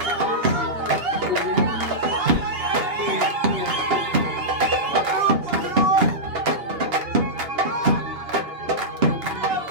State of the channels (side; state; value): left; late; 2.8 ms